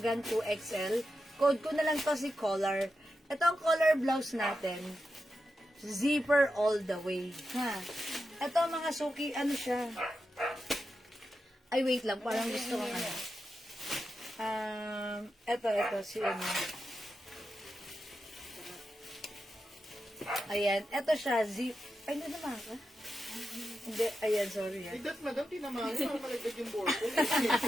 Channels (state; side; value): normal; both; correlation 0.89